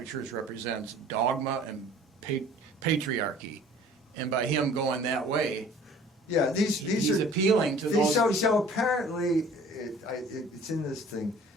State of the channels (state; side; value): normal; both; correlation 0.50